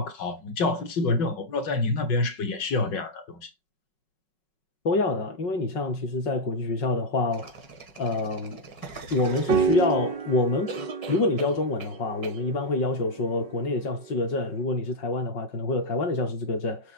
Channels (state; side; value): late; right; 5.4 ms